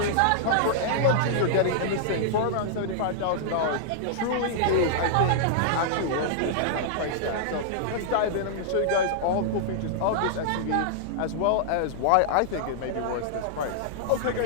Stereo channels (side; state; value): both; different; correlation -0.01